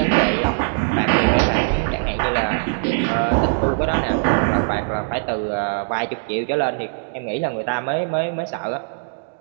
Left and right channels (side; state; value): left; silent; digital silence